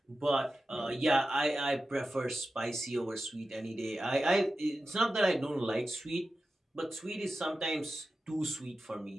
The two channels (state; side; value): normal; both; correlation 0.93